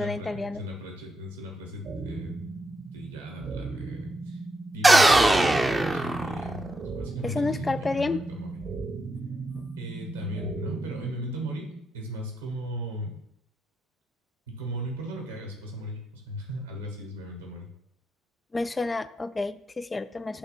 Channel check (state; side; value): normal; both; correlation 0.82